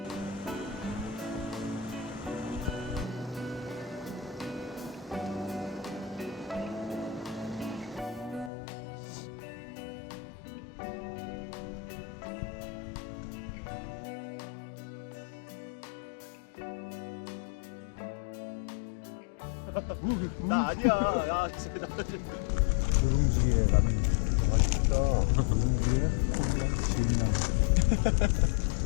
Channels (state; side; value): drops out; right; at 8.5 s